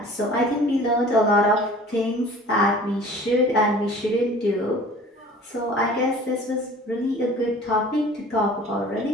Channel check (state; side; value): normal; both; correlation 0.46